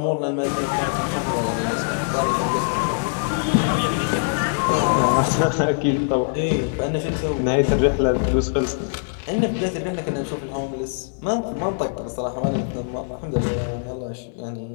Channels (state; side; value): silent; right; 64 dB below the other